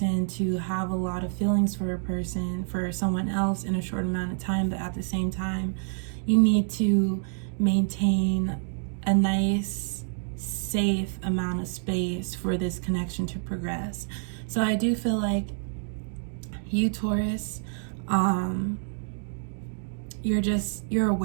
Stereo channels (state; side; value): silent; left; 60 dB below the other